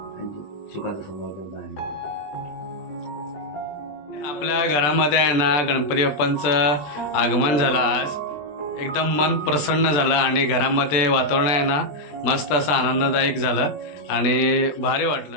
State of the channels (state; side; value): late; right; 20 ms